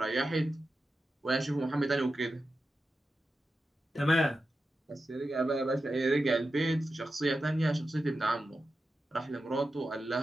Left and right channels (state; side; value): normal; both; correlation 0.91